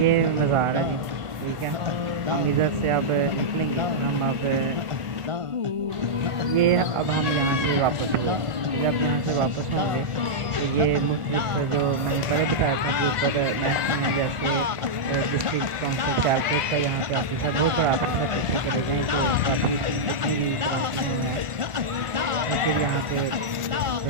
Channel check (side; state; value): left; late; 1.5 ms